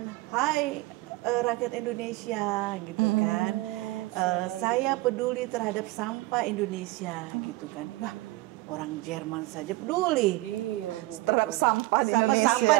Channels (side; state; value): left; quieter; 20.1 dB